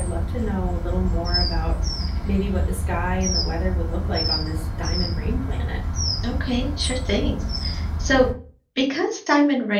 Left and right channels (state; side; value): identical; both; correlation 1.00